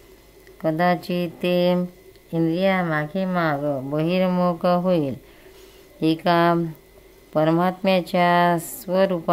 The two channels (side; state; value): both; identical; correlation 1.00